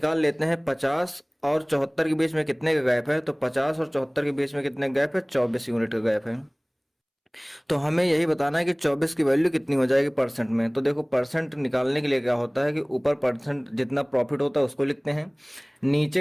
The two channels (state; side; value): identical; both; correlation 1.00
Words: लेते हैं 50 और 74 के बीच में कितने का गैप है, तो 50 और 74 के बीच में कितने गैप है, 24 यूनिट का गैप है। तो हमें यही बताना है कि 24 की वैल्यू कितनी हो जाएगी परसेंट में। तो देखो परसेंट निकालने के लिए क्या होता है कि ऊपर परसेंट जितना प्रॉफिट होता है उसको लिखते हैं,